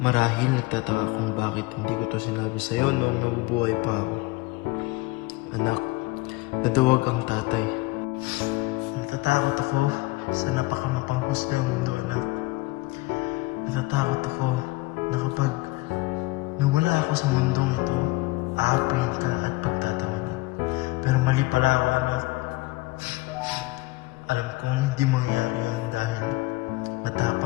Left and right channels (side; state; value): right; quieter; 21.5 dB